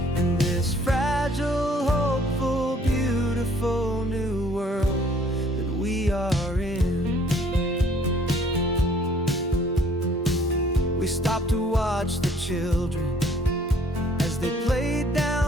in this fragile, hopeful, beautiful new world that we are in. We stopped to watch the children as they played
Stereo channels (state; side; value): normal; both; correlation 0.59